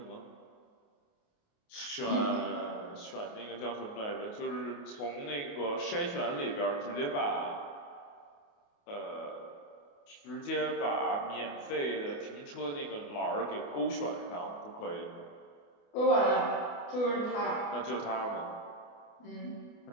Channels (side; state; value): right; late; 28 ms